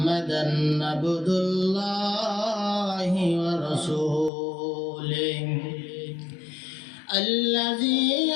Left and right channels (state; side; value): drops out; right; at 4.3 s